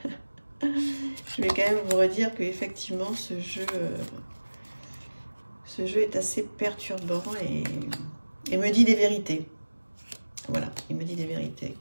je vais quand même vous redire qu'effectivement, ce jeu est assez perturbant et me dit des vérités. Voilà, il me dit des vérités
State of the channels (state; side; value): inverted; both; correlation -1.00